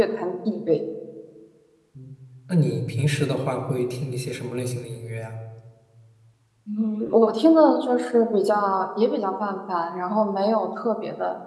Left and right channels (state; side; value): identical; both; correlation 1.00